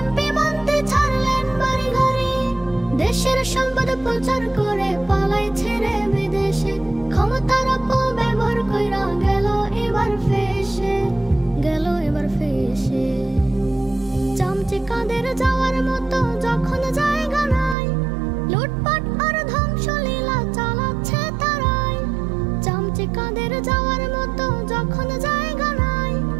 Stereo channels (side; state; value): left; drops out; at 17.8 s